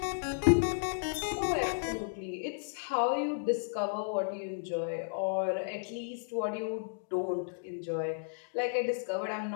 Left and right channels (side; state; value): right; silent; digital silence